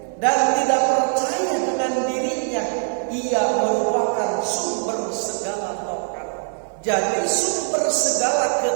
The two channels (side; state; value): left; silent; 64 dB below the other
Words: dan tidak percaya dengan dirinya, ia merupakan sumber segala taat. Jadi sumber segala